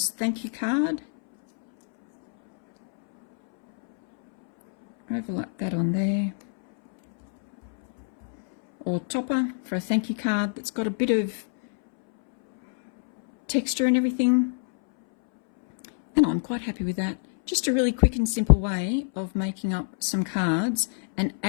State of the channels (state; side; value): silent; right; 62 dB below the other